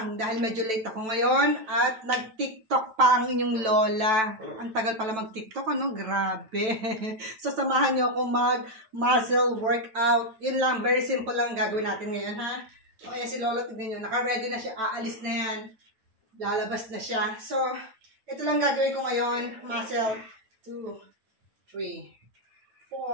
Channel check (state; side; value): late; left; 9.1 ms